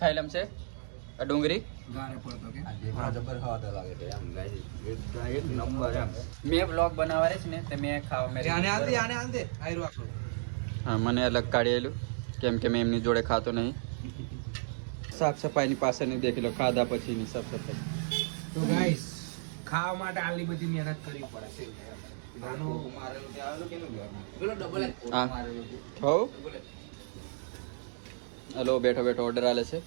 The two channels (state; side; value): silent; left; digital silence